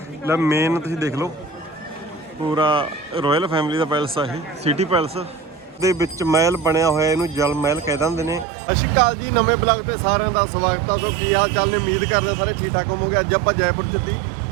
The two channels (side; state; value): left; drops out; at 8.5 s